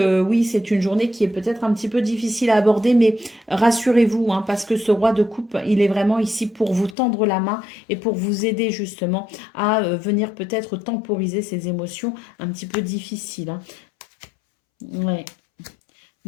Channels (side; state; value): right; drops out; at 7.0 s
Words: oui, c'est une journée qui est peut-être un petit peu difficile à aborder, mais rassurez-vous, hein, parce que ce roi de coupe, il est vraiment ici pour vous tendre la main et pour vous aider justement à venir peut-être temporiser ces émotions un petit peu difficiles, hein. Ouais.